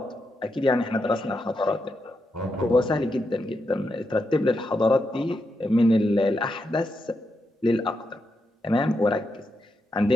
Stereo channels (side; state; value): both; normal; correlation 0.84